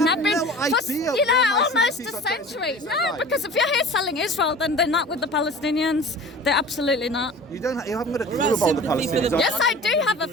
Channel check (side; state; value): both; normal; correlation 0.40